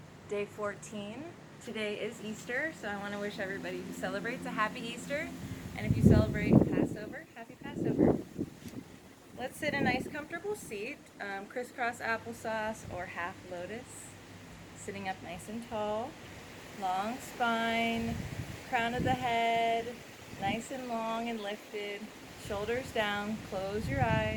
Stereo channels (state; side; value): identical; both; correlation 1.00